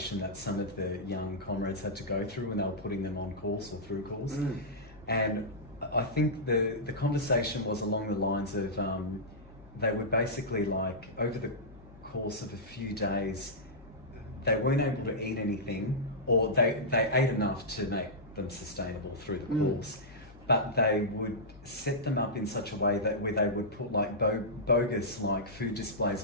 that some of the young comrades had to go through when they were putting them on course or through course. And I think the conversation was along the lines of they were basically like, over the course of a few days, they weren't able to eat anything, or they ate enough to make them sustainable through the course. But they would set them up in such a way that where they would put like bogus like food displays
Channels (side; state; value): left; noise; hum, 22 dB below the sound